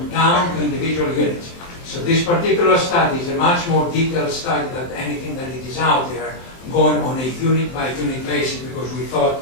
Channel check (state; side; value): late; right; 23 ms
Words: down to individual units. So this particular study is a much more detailed study than anything that it is out there, going on a unit-by-unit basis, because we